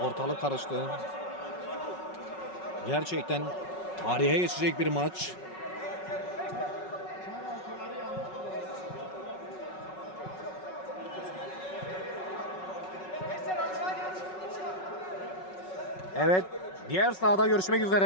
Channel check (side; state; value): right; late; 5.4 ms